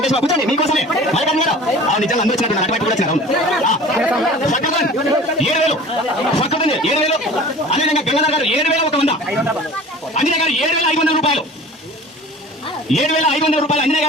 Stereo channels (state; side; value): normal; both; correlation 0.42